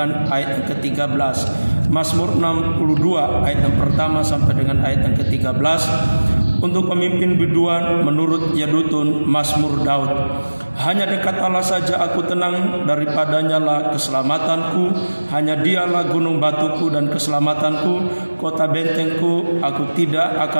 ayat yang ke-13. Mazmur 62 ayat yang pertama sampai dengan ayat yang ke-13. Untuk pemimpin biduan menurut Yedutun, Mazmur Daud. Hanya dekat Allah saja aku tenang, daripadanya lah keselamatanku. Hanya dialah gunung batuku dan keselamatanku, kota bentengku, aku tidak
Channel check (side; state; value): both; inverted; correlation -1.00